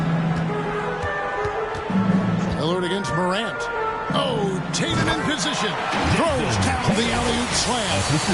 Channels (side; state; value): both; identical; correlation 1.00